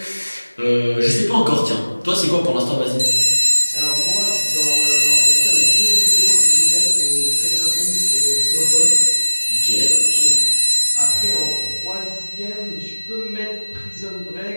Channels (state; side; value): inverted; both; correlation -1.00